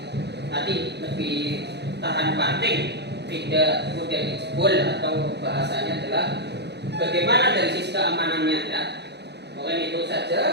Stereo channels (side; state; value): left; late; 0.49 ms